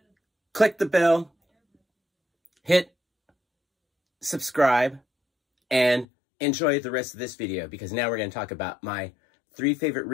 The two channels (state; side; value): drops out; right; at 6.1 s